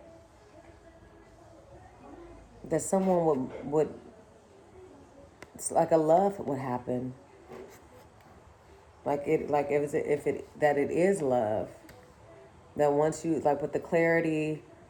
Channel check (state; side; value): identical; both; correlation 1.00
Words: someone would it's like a love would happen, like if it that it is love, that once you, like with the clarity